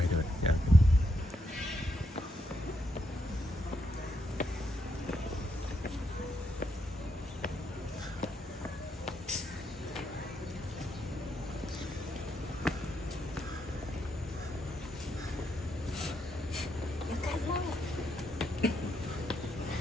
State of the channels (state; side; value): normal; both; correlation 0.79